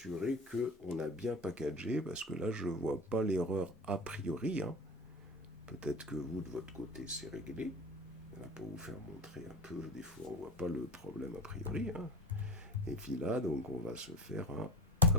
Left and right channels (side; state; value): both; normal; correlation 0.31